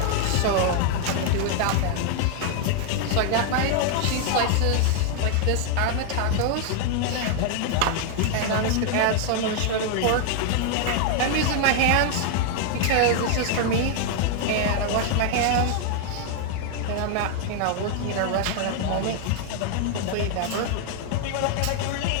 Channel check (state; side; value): different; both; correlation 0.00